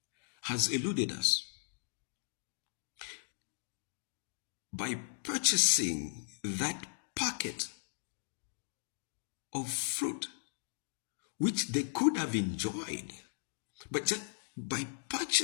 has eluded us. By purchasing that packet of fruit, which they could have enjoyed, but just by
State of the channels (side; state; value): right; silent; digital silence